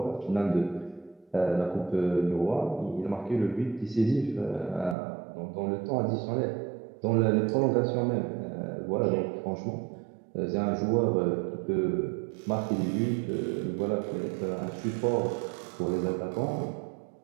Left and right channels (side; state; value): left; drops out; at 5.0 s